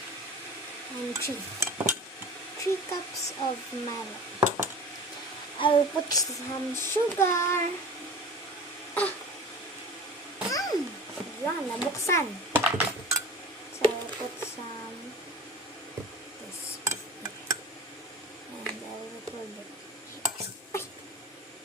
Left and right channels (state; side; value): normal; both; correlation 0.37